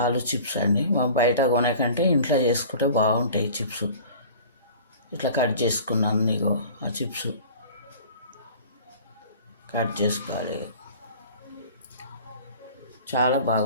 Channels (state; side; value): inverted; both; correlation -0.44